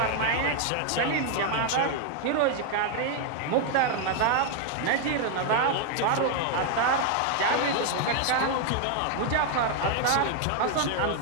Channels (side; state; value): both; different; correlation 0.00